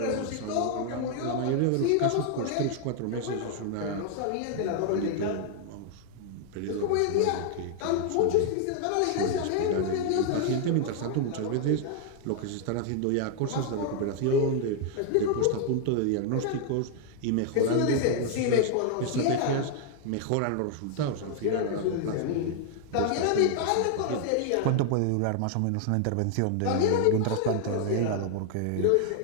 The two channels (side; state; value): both; different; correlation 0.00